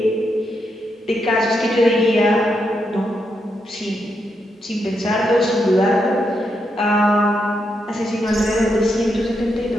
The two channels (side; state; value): both; normal; correlation 0.82